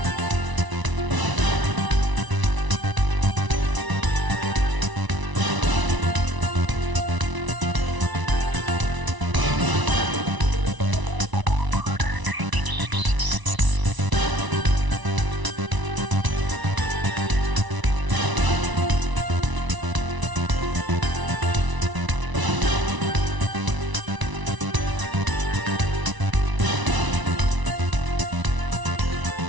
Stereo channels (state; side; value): late; left; 1.0 ms